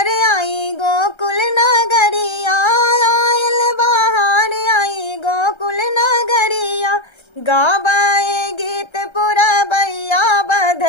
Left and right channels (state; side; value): late; right; 1.3 ms